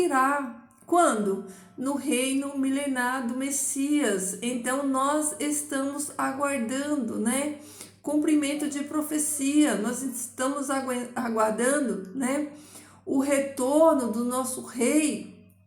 Quando? No reino milenar do Messias. Então, nós estamos aguardando, né? Cumprimento de profecia. Nós estamos aguardando, né? O retorno do nosso rei,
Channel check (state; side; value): identical; both; correlation 1.00